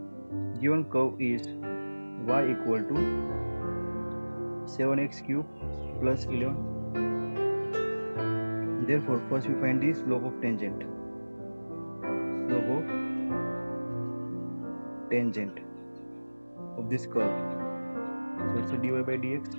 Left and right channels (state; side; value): inverted; both; correlation -1.00